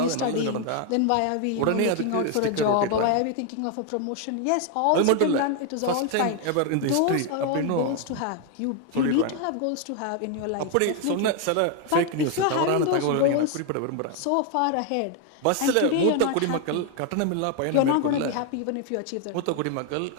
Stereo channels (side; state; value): both; different; correlation 0.01